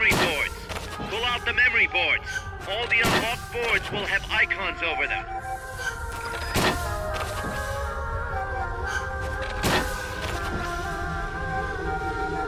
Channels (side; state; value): both; identical; correlation 1.00